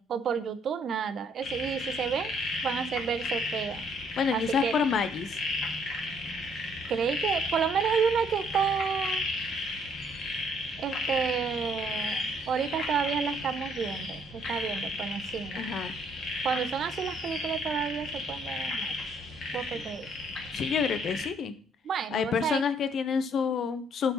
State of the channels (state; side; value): normal; both; correlation 0.65